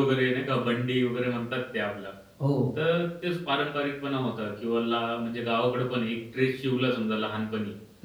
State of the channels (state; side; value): identical; both; correlation 1.00